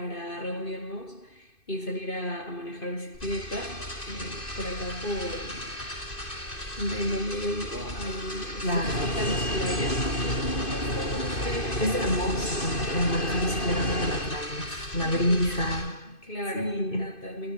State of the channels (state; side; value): late; right; 2.5 ms